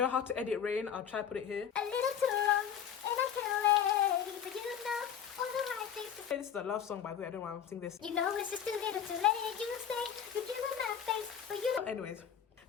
how to edit rain, I'll try to put it here. A little too long, and I'm too late. But you know all the right things to say. This is a love song, by the way. I don't want to sing this. You know it's just too little too late. You say you give them that face, but you don't. Anyways,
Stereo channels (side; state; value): right; quieter; 8.5 dB